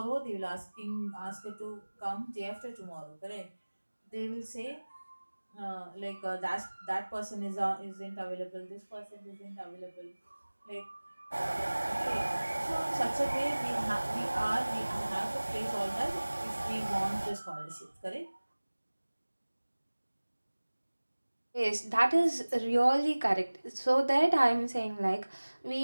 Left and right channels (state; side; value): inverted; both; correlation -1.00